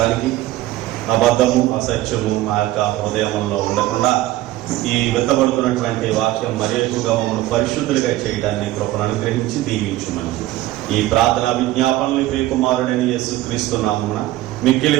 అబద్ధము అసత్యము మా యొక్క హృదయంలో ఉండకుండా ఈ విత్తబడుతున్నటువంటి వాక్యం మరి ఎక్కువగా మమ్మల్ని పరిశుద్ధులుగా చేయడాన్ని కృపను అనుగ్రహించి దీవించుమని ఈ ప్రార్థన విజ్ఞాపనలు ప్రియ కుమారుడని యేసుక్రీస్తు నామమున మిక్కిలి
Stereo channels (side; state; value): left; quieter; 15.9 dB